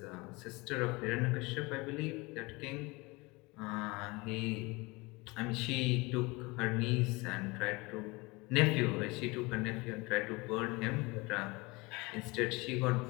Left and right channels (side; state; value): right; quieter; 24.8 dB